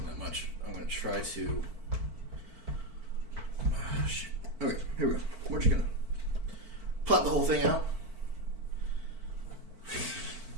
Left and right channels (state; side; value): late; left; 4.5 ms